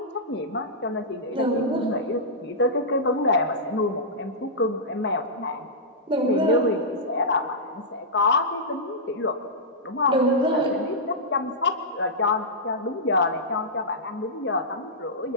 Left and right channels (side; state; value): both; normal; correlation -0.12